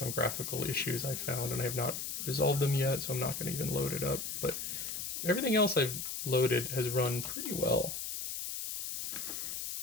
graphical issues I found, and I have not resolved them yet, so I'm not going to even load it up. But everything else I've loaded has run pretty well.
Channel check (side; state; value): left; noise; hiss, 4 dB below the sound